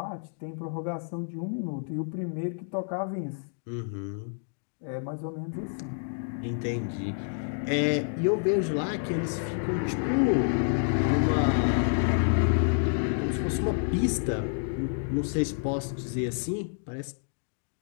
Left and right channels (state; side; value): silent; right; digital silence